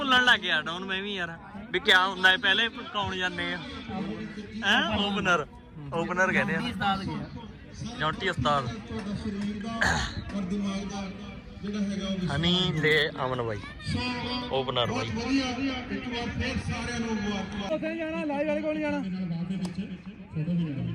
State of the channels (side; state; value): both; identical; correlation 1.00